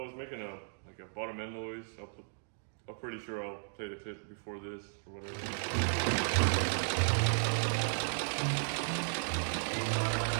was making a bottom end noise. I'm pretty sure I'll play the clip before this or whatever.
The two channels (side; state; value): left; silent; digital silence